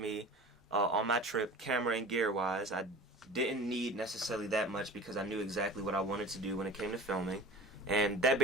on my trip, camera and gear wise. I didn't need necessarily that much because I knew exactly what I wanted to do when it came to filming, and that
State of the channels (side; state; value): both; normal; correlation 0.37